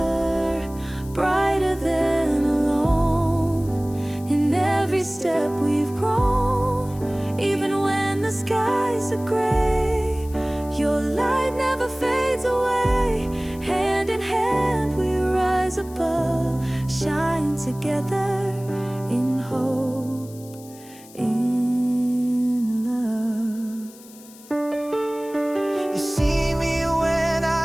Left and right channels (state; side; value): noise; left; hiss, 21 dB below the sound